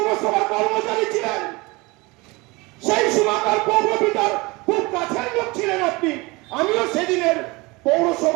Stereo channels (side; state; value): left; quieter; 24.4 dB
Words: কর্মচারী ছিলেন, সেই সময়কার পৌরপিতার খুব কাছের লোক ছিলেন আপনি। আমিও সেদিনের